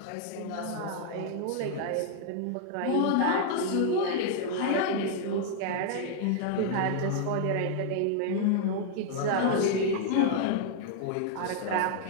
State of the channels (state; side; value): different; both; correlation 0.00